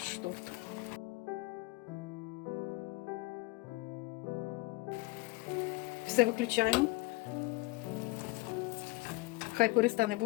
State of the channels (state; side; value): quieter; right; 22.5 dB